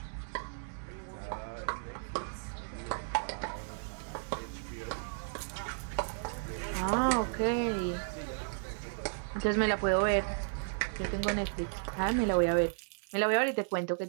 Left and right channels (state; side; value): silent; left; digital silence